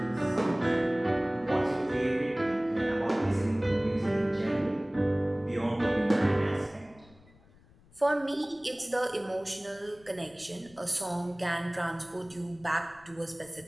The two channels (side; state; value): left; noise; rumble, 27 dB below the sound